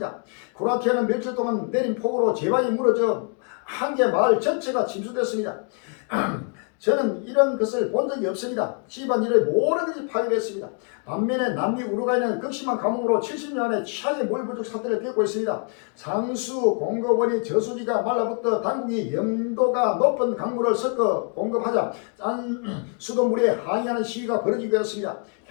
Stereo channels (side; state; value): right; quieter; 39.7 dB